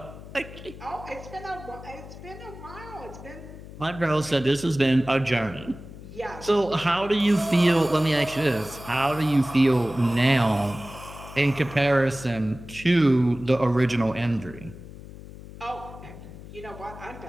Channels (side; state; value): left; noise; hum, 15 dB below the sound